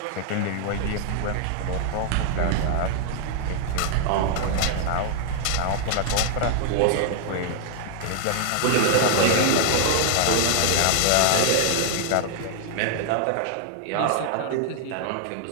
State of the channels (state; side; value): different; both; correlation -0.01